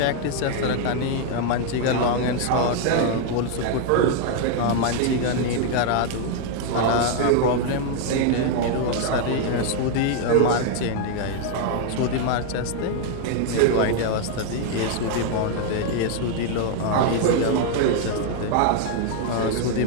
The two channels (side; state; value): both; different; correlation 0.00